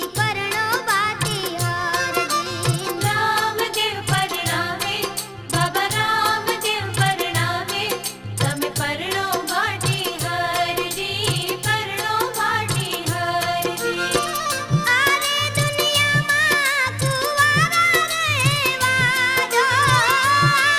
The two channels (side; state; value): both; identical; correlation 1.00